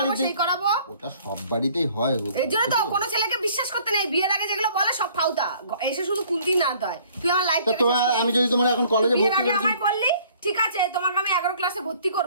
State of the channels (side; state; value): both; inverted; correlation -0.57